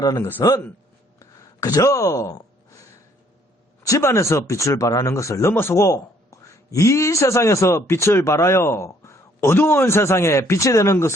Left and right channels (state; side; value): normal; both; correlation 0.63